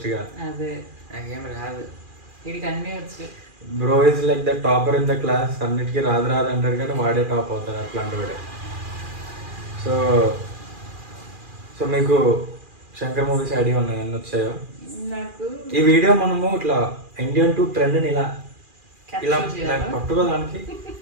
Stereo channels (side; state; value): left; late; 2.4 ms